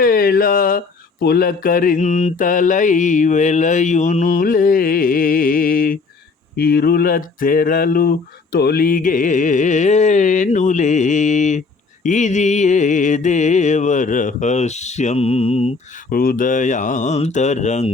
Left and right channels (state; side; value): quieter; right; 4.3 dB